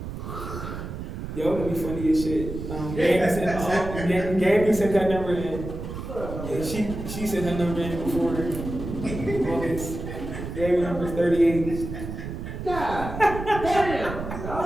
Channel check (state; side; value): noise; right; rumble, 7 dB below the sound